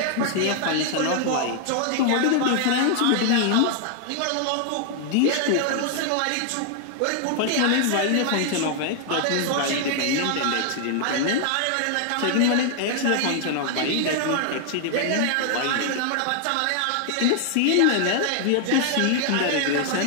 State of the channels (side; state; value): both; different; correlation 0.00